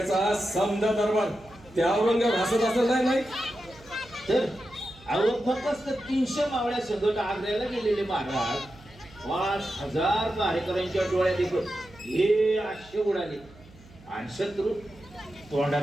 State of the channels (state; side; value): noise; right; hum, 23 dB below the sound